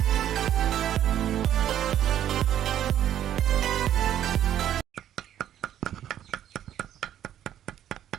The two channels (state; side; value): quieter; left; 11.0 dB